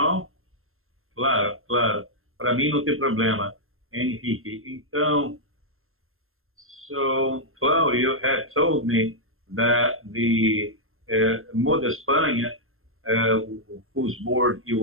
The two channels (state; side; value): late; left; 0.61 ms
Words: Claro, claro. Para mim não tem problema, Henrique. Então, so Claudio had told me that the Moda España, whose board